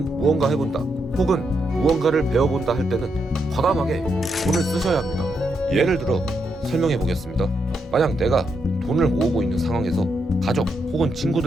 무언가 해본다, 혹은 무언가를 배워본다 할 때는 과감하게 돈을 쓰셔야 합니다. 예를 들어 설명해 보겠습니다. 만약 내가 돈을 모으고 있는 상황에서 가족 혹은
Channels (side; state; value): both; normal; correlation 0.81